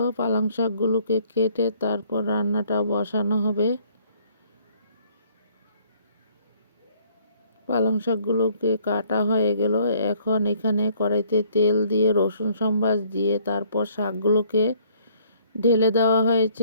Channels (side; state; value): both; inverted; correlation -0.61